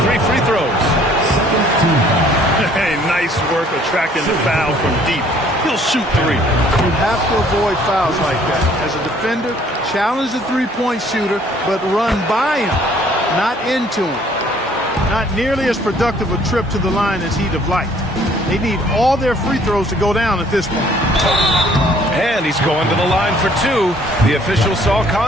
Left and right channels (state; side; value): normal; both; correlation 0.59